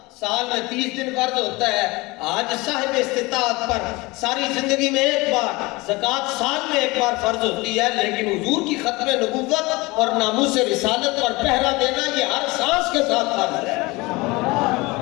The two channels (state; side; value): quieter; right; 23.2 dB